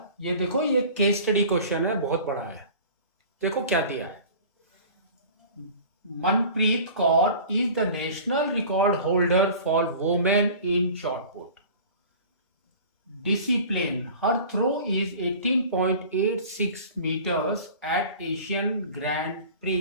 ये देखो, ये केस स्टडी क्वेश्चन है, बहुत बड़ा है। देखो क्या दिया है। Manpreet Kaur is the national record holder for women in short put discipline. Her throw is 18.86 meters at Asian Grand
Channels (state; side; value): inverted; both; correlation -0.42